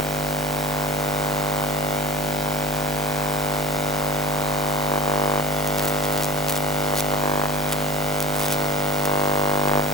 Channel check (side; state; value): both; normal; correlation 0.39